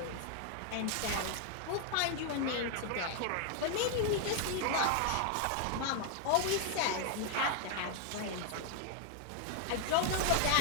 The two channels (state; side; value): different; both; correlation 0.00